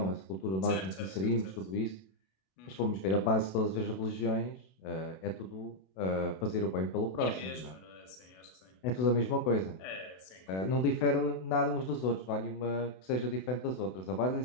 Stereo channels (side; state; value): right; late; 32 ms